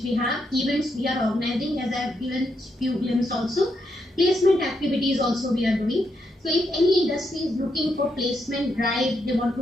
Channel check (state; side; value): normal; both; correlation 0.80